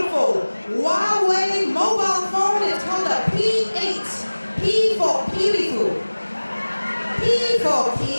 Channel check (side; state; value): both; inverted; correlation -1.00